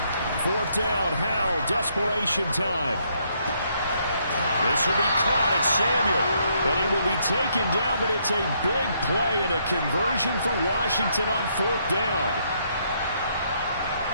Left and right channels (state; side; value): inverted; both; correlation -0.72